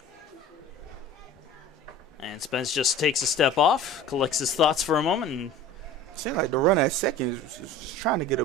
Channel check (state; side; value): normal; both; correlation 0.40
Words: And Spence just takes a step off, collects his thoughts for a moment. And seems like the runner at second is trying to get a